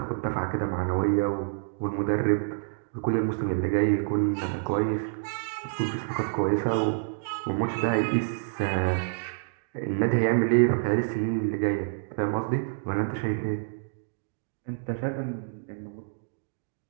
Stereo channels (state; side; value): silent; left; digital silence